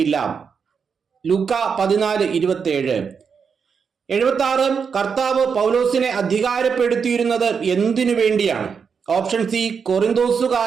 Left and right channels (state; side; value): quieter; left; 6.2 dB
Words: ലൂക്ക 14:27. 76 കർത്താവ് പൗലോസിനെ അധികാരപ്പെടുത്തിയിരുന്നത് എന്തിനു വേണ്ടിയാണ്? ഓപ്ഷൻ സി